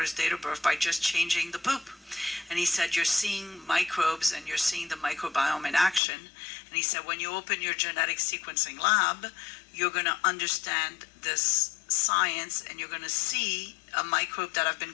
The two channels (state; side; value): drops out; right; at 6.0 s